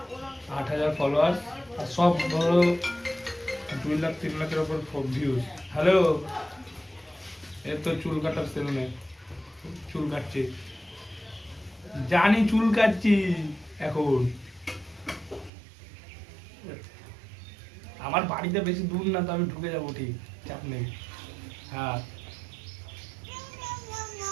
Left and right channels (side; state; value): left; drops out; at 15.5 s